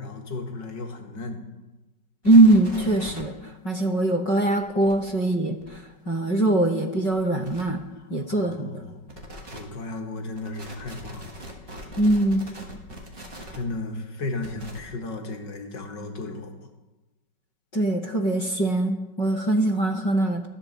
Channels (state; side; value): late; right; 5.4 ms